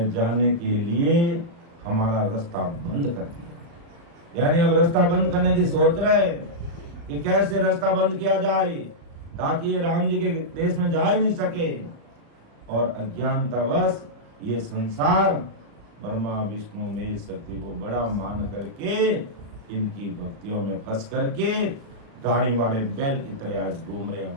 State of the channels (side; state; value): left; late; 35 ms